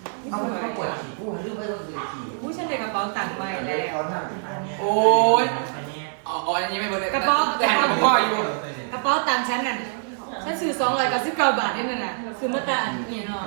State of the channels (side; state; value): left; silent; digital silence